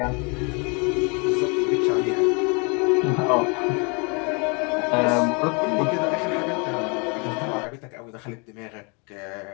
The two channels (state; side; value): quieter; right; 32.8 dB